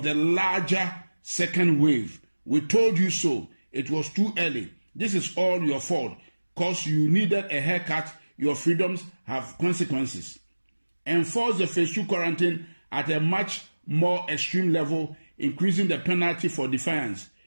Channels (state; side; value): inverted; both; correlation -1.00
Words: the larger second wave. We told you so. It was too early. This is all your fault. Cause you needed a haircut, your freedoms have consequences. Enforce the phase 2 quarantine at a much more extreme level, increasing the penalty for defiance.